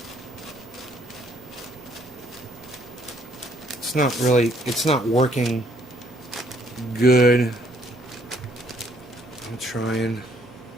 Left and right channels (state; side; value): normal; both; correlation 0.66